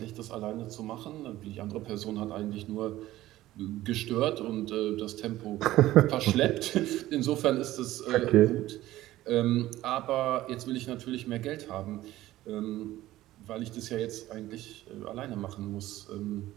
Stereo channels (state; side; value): quieter; left; 15.6 dB